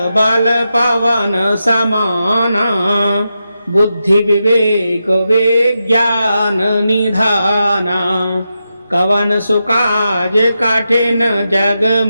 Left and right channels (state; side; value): inverted; both; correlation -0.88